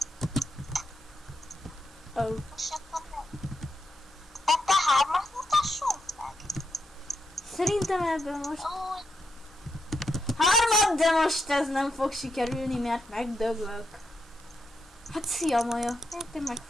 Oh. És akkor nem. Ebbe hármat mutassunk meg. Szerintem ebben most Ó, hármat, de most ez nem fog sikerülni, mert megdöglök. Hát szia, Maja. Hát én meg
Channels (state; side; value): normal; both; correlation 0.83